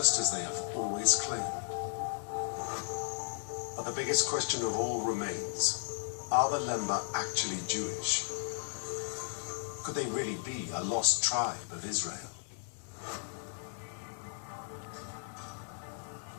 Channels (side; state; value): right; silent; digital silence